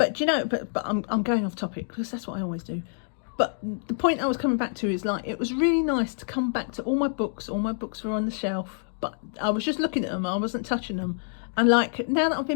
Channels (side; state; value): right; silent; digital silence